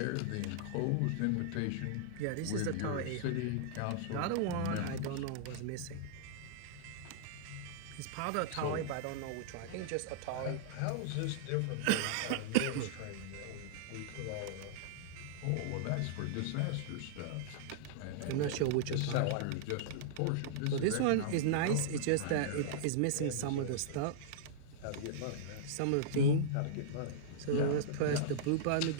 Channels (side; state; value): both; different; correlation -0.02